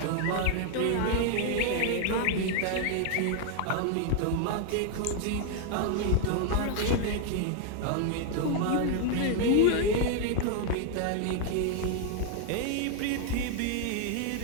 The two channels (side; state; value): both; different; correlation 0.00